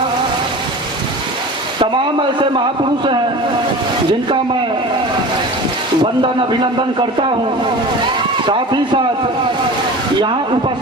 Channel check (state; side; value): normal; both; correlation 0.36